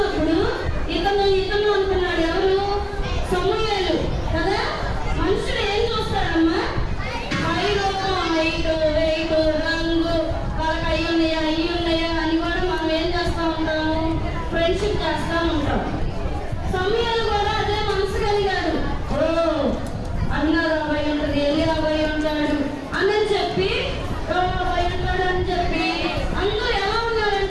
ఇతను అనుకున్నాడు. ఎవరు? సమూయేలు కదా. మనుషులు ఏం చూస్తారమ్మా? హైట్, వెయిట్, రంగు, వాళ్ళకి అయ్యి ఉన్నాయా అని కూడా మనం ఏం చేస్తూ ఉంటాము? ఫ్రెండ్షిప్ చేస్తూ ఉంటాం. సమూయేలు కూడా అదే మనసు కలిగాడు. అన్నారు అబ్బాయి ఉంటుంది, ఎల్లి అబ్బాయి ఉంటాడు అని చెప్పి అబ్బాయి ఉంటాడు అని చెప్పి అందరూ ఎలా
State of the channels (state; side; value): identical; both; correlation 1.00